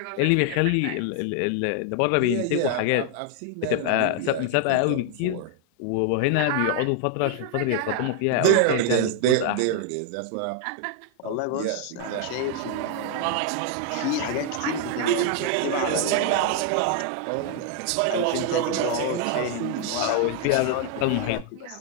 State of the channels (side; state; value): both; different; correlation 0.00